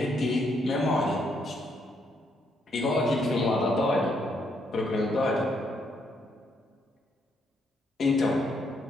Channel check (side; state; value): both; normal; correlation 0.74